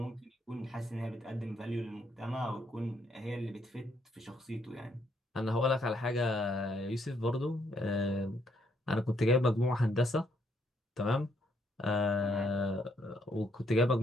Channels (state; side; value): normal; both; correlation 0.72